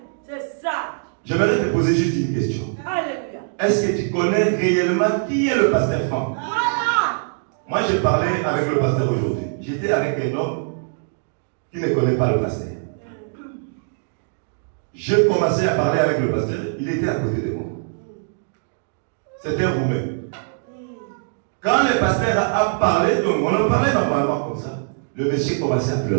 J'aimerais te poser juste une question. Est-ce que tu connais réellement qui est le pasteur Franck? Moi, j'ai parlé avec le pasteur aujourd'hui. J'étais avec un homme qui ne connaît pas le pasteur. J'ai commencé à parler avec le pasteur. Il était à côté de moi. C'était vous-même. Quand le pasteur a parlé, donc on en parlait normalement comme ça, le monsieur commençait à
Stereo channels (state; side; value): silent; left; digital silence